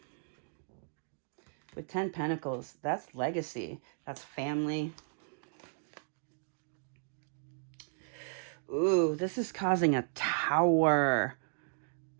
With 10 Pentacles, that's legacy. That's family. Ooh, this is causing a Tower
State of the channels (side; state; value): left; silent; digital silence